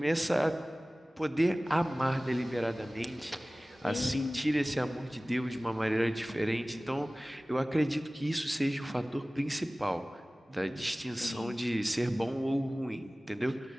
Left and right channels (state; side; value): normal; both; correlation 0.98